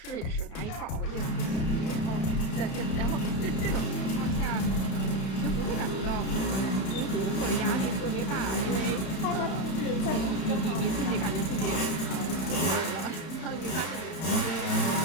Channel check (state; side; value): late; right; 31 ms